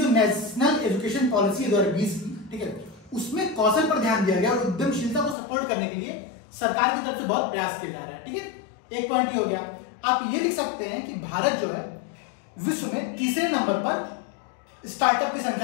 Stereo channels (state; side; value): drops out; right; at 5.4 s